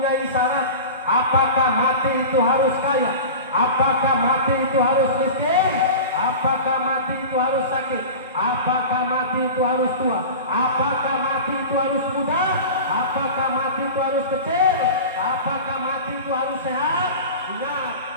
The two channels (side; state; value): both; inverted; correlation -0.32